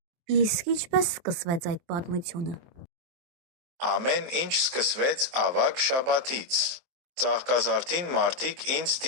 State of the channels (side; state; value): left; late; 23 ms